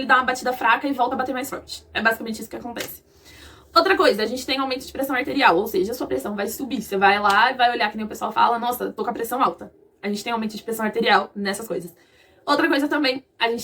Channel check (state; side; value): identical; both; correlation 1.00